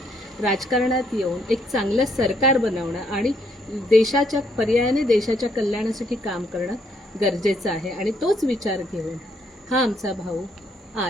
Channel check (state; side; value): normal; both; correlation 0.71